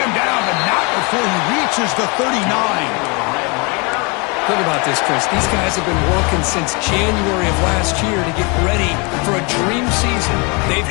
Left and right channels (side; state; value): right; quieter; 30.3 dB